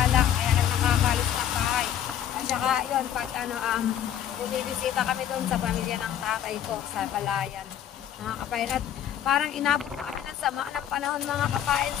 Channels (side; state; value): right; quieter; 10.2 dB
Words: Kaya lang nakakalis na bahay. At saka yun, pag bumibisita kami doon sa pamilya ng tatay ko sa Balayan. Mga kapain. At parang inabot kami ng sama ng panahon mga kapain.